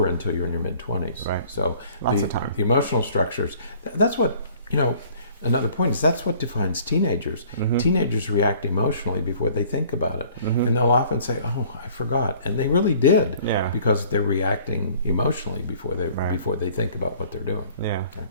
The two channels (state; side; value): inverted; both; correlation -0.54